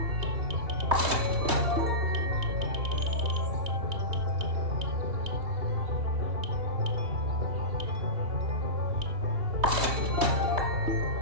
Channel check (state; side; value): late; left; 3.2 ms